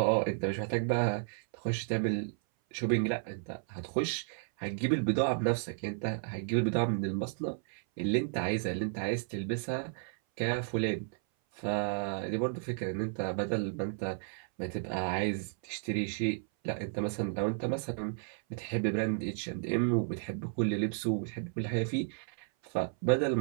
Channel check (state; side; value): silent; left; 56 dB below the other